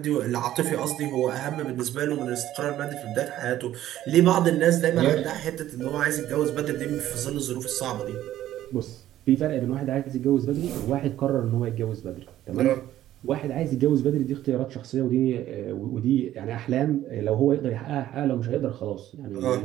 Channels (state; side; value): quieter; left; 13.1 dB